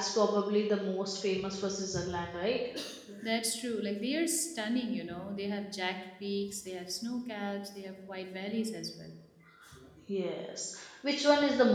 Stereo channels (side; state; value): both; identical; correlation 1.00